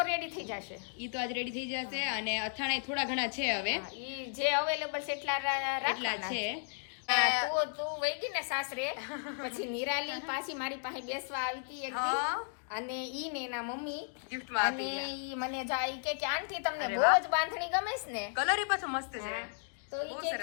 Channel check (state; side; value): silent; right; digital silence